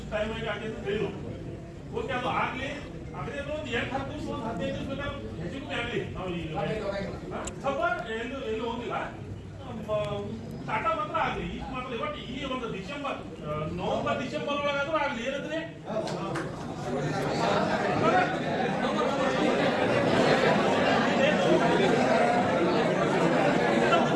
ಟೈಮ್ ಆಗಿ ಆಗಿ ಅಂತ ಹೇಳಿದ್ರು. ಓಕೆ ಅದು ಆಗ್ಲಿ. ಅದೇ ಒಂದು 8-10 ದಿವಸ ಒಂದು 15 ದಿವಸ ಬೇಕಾದ್ರೆ ಹೆಚ್ಚಿಗೆ ಆಗಲಿ. ನಾವು ಈಗ ಸ್ವಲ್ಪ ಎಲ್ಲೂ ಹೋಗಿಲ್ಲ. ಟಾಟಾ ಮಾತ್ರ ಆಗ್ಲಿ ಈಗ ಮಾತ್ರ. ಬಟ್ ಈ ಒಂದು ನವೆಂಬರ್ ಡಿಸೆಂಬರ್ ಒಳಗಾದ್ರೂ ಆಗ್ಲಿ. ಏನಂದ್ರೆ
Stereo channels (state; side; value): identical; both; correlation 1.00